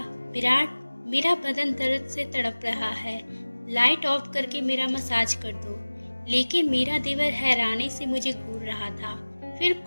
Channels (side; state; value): both; inverted; correlation -1.00